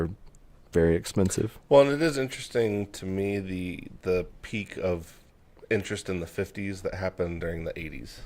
very expensive. Well, and it is interesting to me the peak of interest in the 50s that happened during the 80s.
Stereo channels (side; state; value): both; identical; correlation 1.00